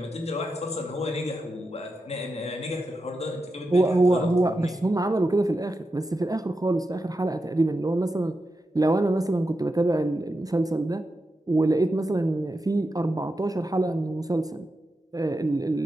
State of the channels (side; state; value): both; normal; correlation 0.88